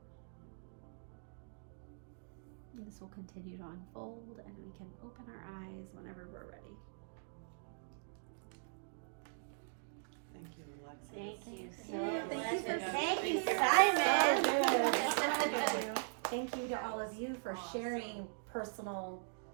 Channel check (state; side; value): silent; left; digital silence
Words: And this will continue to unfold, and we can open our eyes whenever we're ready. Thank you, Alexis. Thank you so Thank you for Thank you, being here. Simon. So good. Thank you to all of you for sharing personal